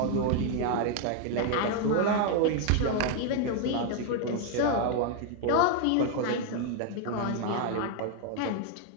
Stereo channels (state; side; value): different; both; correlation 0.00